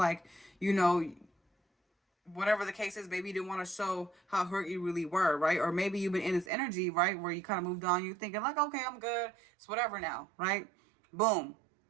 you know, whatever the case is, maybe you didn't want to show how hurt you really were, right? Or maybe you've been in this energy, right, where you kind of moved on. You're thinking like, okay, I'm good. It's whatever now, right? Boom.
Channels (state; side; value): drops out; left; at 6.5 s